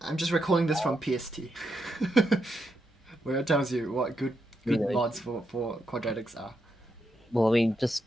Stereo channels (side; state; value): both; normal; correlation 0.82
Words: just recalling this from PST. Where it tells you what good 390. mods for quadratics are. Well, I mean, just